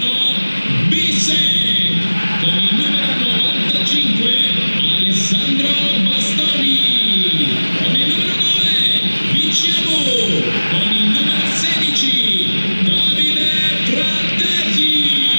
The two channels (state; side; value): inverted; both; correlation -1.00